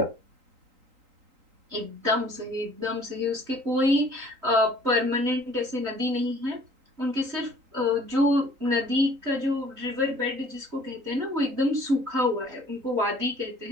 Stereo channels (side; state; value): left; late; 3.8 ms